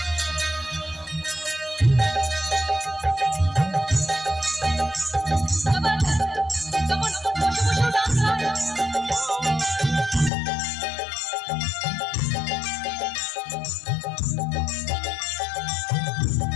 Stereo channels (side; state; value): right; drops out; at 10.3 s